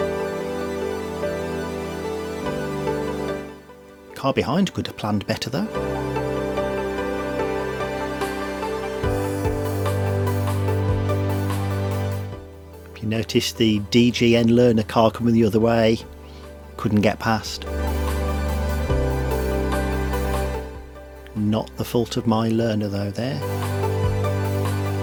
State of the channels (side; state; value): both; identical; correlation 1.00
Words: Car behind could have planned better though. If you notice the DGN learner car coming the other way, couldn't get past. Not the fault of my learner though there.